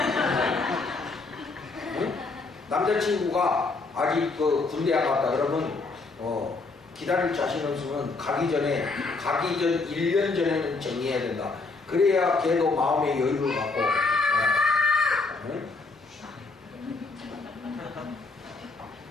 응? 남자친구가 아직 그 군대 안 갔다 그러면 기다릴 자신 없으면 가기 전 1년 전에는 정리해야 된다. 그래야 걔도 마음의 여유를 갖고 응?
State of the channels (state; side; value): quieter; right; 3.8 dB